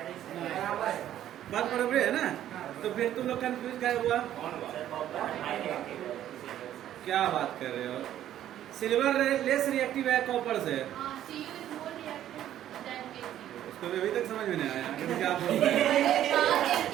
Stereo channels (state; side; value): quieter; left; 11.8 dB